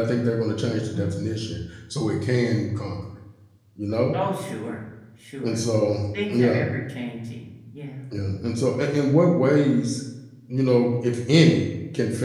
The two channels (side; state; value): both; identical; correlation 1.00